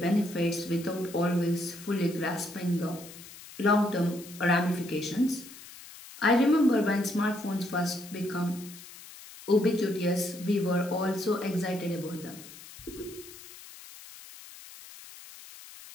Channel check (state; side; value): noise; left; hiss, 17 dB below the sound